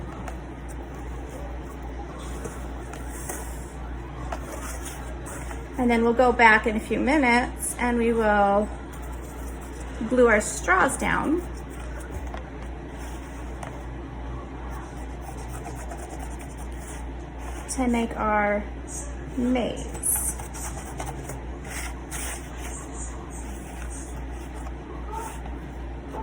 And then we'll go back in a few minutes and we will glue our straws down. To make our maze.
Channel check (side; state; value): both; identical; correlation 1.00